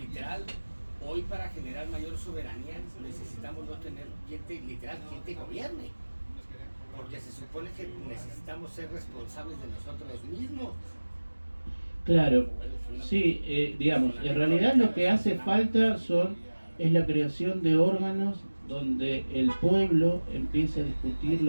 hoy para generar mayor soberanía necesitamos no tener quien te gobierne. Porque se supone que necesitamos ser responsables de nosotros mismos. claro, sí, digamos, en realidad lo que hace falta es la creación de órganos donde el pueblo empiece a discutir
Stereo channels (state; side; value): inverted; both; correlation -1.00